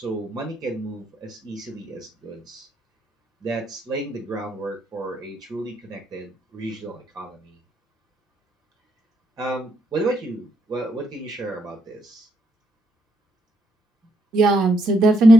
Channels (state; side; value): normal; both; correlation 0.75